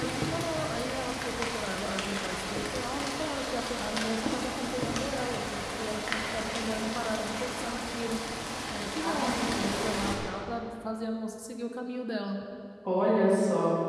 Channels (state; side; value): identical; both; correlation 1.00